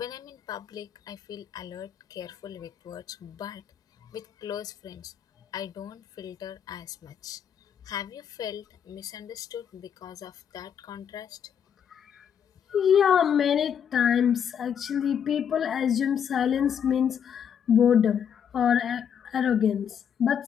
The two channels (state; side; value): quieter; right; 8.2 dB